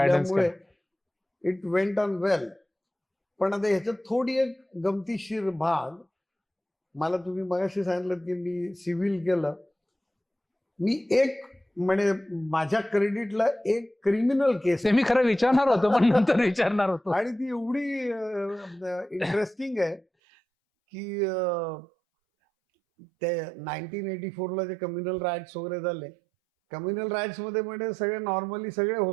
इट वेंट ऑन वेल. पण आता ह्याच्यात थोडी एक गमतीशीर भाग, मला तुम्ही मगाशी सांगितलं की मी सिव्हिल केलं. मी एक म्हणजे माझ्या क्रेडिटला एक क्रिमिनल केस ते मी खरं विचारणार होतो, पण नंतर विचारणार होतो. आणि ती एवढी इंटरेस्टिंग आहे की ते 1984ला जे कम्युनल राईट्स वगैरे झाले, कम्युनल राईट्स मध्ये म्हणजे सगळे नॉर्मली सगळे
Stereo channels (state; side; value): drops out; left; at 20.0 s